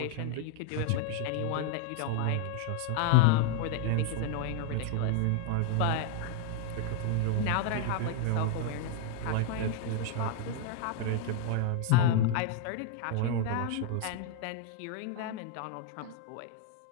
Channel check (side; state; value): both; different; correlation 0.00